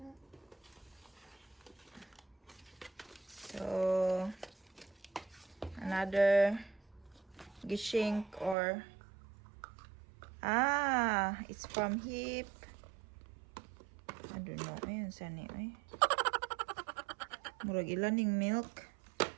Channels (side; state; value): left; drops out; at 8.6 s